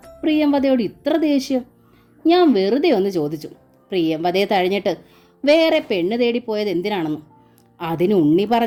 പ്രിയംവദയോട് ഇത്ര ദേഷ്യം? ഞാൻ വെറുതെ ഒന്ന് ചോദിച്ചു. പ്രിയംവദയെ തഴഞ്ഞിട്ട് വേറെ പെണ്ണ് തേടിപ്പോയത് എന്തിനാണെന്ന്. അതിന് ഉണ്ണി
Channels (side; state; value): both; identical; correlation 1.00